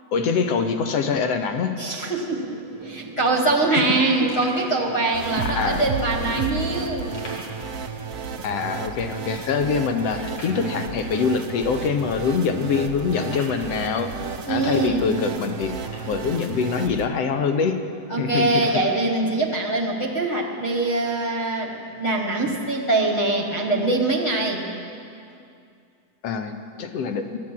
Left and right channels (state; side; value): late; right; 7.9 ms